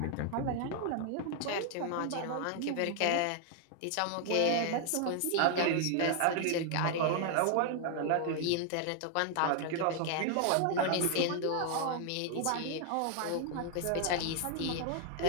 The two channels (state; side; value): different; both; correlation 0.00